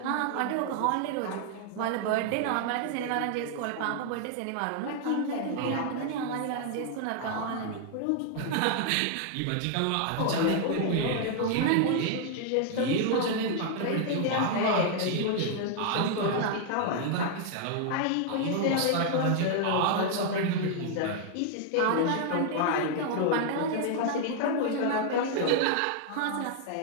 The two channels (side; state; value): both; different; correlation 0.00